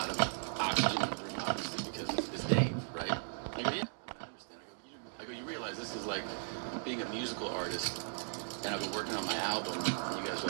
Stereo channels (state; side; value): silent; left; digital silence